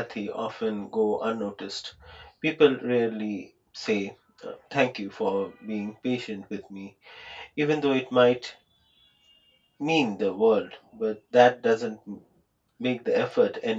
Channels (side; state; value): both; identical; correlation 1.00